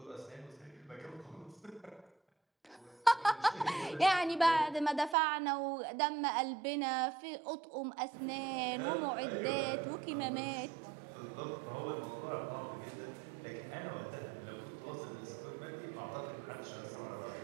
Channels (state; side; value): drops out; left; at 5.2 s